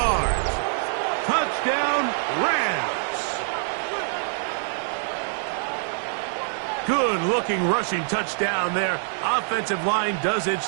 Touchdown, Rams. Good-looking rushing touchdown there. Offensive line does its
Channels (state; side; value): silent; left; 62 dB below the other